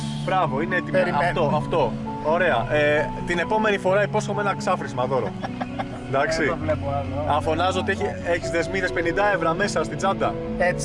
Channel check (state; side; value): identical; both; correlation 1.00